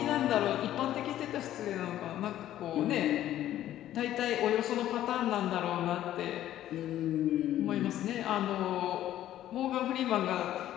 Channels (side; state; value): right; quieter; 12.7 dB